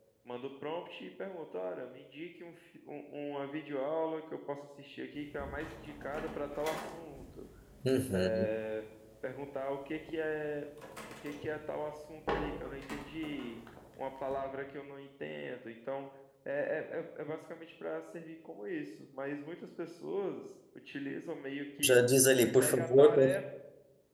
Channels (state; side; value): identical; both; correlation 1.00